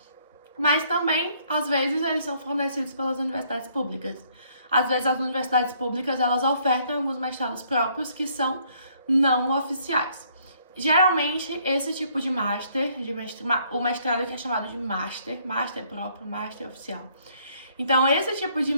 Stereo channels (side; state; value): both; inverted; correlation -0.66